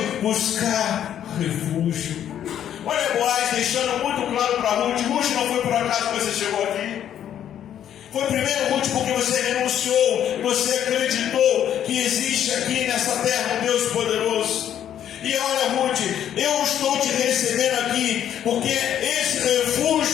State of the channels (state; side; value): quieter; right; 10.2 dB